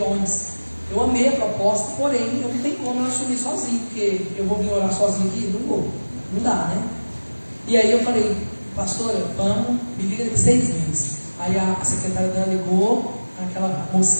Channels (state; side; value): inverted; both; correlation -1.00